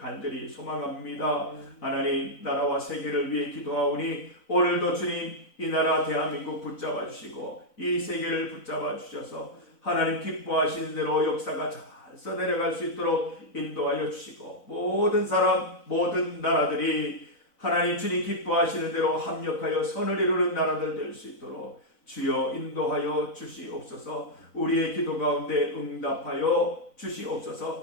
소망합니다. 하나님 나라와 세계를 위해 기도하오니 오늘도 주님 이 나라 대한민국 붙잡아 주시고 이 세계를 붙잡아 주셔서 하나님 기뻐하시는 대로 역사가 잘 써내려갈 수 있도록 인도하여 주시고 모든 사람 모든 나라들이 하나님 주님 기뻐하시는 대로 합력하여 선을 이루는 나라들 될 수 있도록 주여 인도하여 주시옵소서. 우리의 기도 가운데 응답하여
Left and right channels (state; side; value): late; right; 4.0 ms